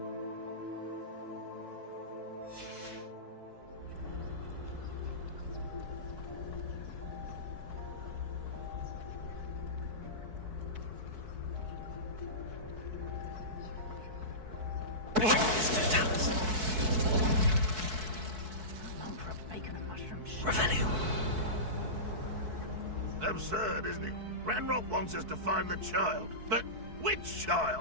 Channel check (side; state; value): left; late; 4.6 ms